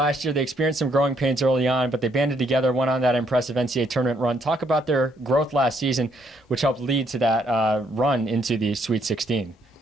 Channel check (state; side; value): normal; both; correlation 0.71